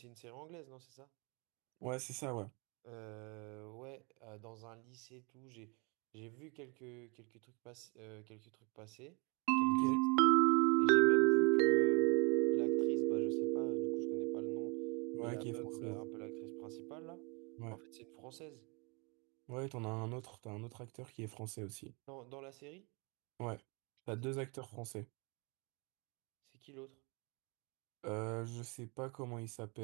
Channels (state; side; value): quieter; left; 31.3 dB